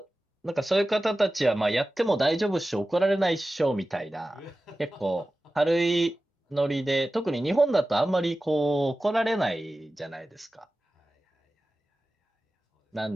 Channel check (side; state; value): both; normal; correlation 0.95